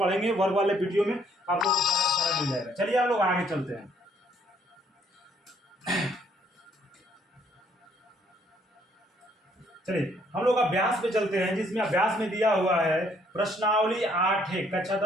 वर्ग वाले वीडियो में आपको सारा मिल जाएगा। चलिए हम लोग आगे चलते हैं। चलिए हम लोग अभ्यास पे चलते हैं, जिसमें अभ्यास में दिया हुआ है प्रश्नावली 8 है, कक्षा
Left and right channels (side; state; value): both; normal; correlation 0.66